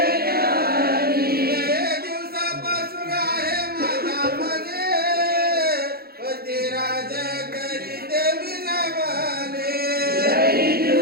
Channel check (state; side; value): late; left; 0.45 ms